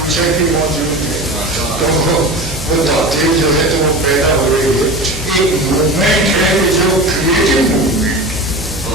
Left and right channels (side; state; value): right; noise; hum, 12 dB below the sound